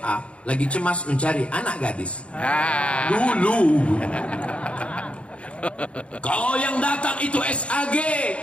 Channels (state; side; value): late; right; 0.061 ms